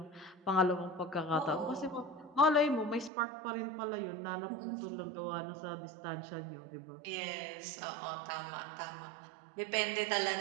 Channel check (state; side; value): drops out; left; at 3.1 s